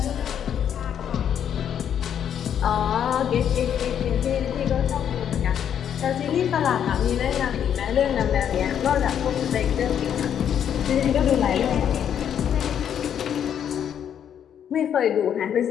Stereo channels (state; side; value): quieter; right; 9.1 dB